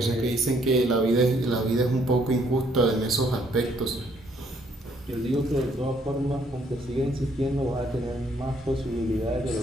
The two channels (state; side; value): normal; both; correlation 0.67